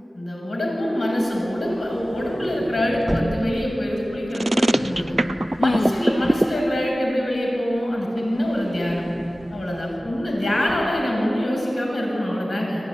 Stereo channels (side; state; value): both; normal; correlation 0.96